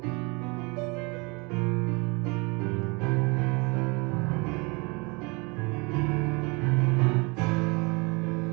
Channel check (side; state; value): left; quieter; 28.6 dB